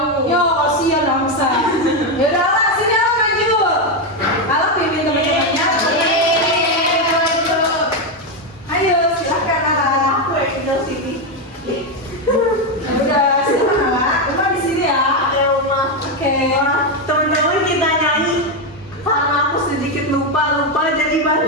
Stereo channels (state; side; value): normal; both; correlation 0.07